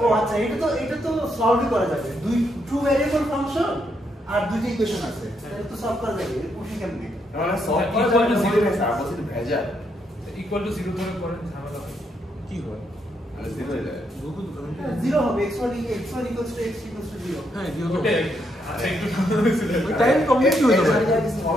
ও আচ্ছা, এটা তো সলভই করা যাবে। দুই ট্রু ভ্যারিয়েবল ফাংশন আর দুইটা ইকুয়েশন আছে, এটা তো সলভ করা যাবে। পুশি কেমনে? মানে সলভ করা যাবে না বলে স্যার বলছি ভেজা ইকুয়াল টু 0 ধরে করেন ঝামেলা হবে। কি হয় মানে জিরো হয়ে যায় গুগল 0 হবে, x1 x = x 0। হ্যাঁ দিও তো ওটাই আচ্ছা একটু ছিল ওই টাইম কমপ্লিট হয়ে যাবে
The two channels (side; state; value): both; normal; correlation 0.77